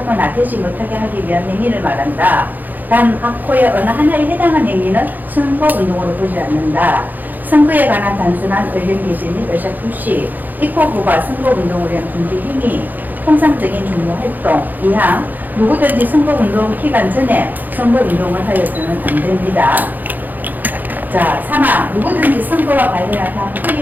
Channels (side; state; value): left; late; 0.085 ms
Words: 되지 못하게 하기 위한 행위를 말한다. 단 학호의 어느 하나에 해당한 행위는 선거운동으로 보지 않는다. 선거에 관한 단순한 의견 개진 및 의사 표시, 입법부가 선거운동을 위한 준비 행위, 통상적인 종로활동, 이항 누구든지 선거운동 기간 전에 선거운동을 하여서는 안 됩니다. 자, 3항 누구든지 선거와 관련한